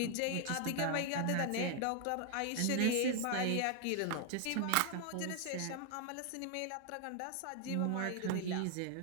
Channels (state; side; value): different; both; correlation 0.00